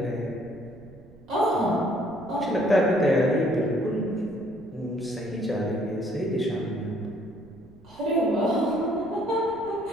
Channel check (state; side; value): noise; right; rumble, 23 dB below the sound